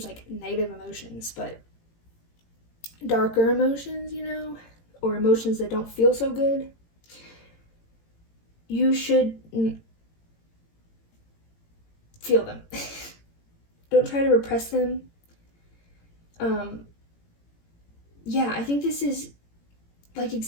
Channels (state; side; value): late; right; 18 ms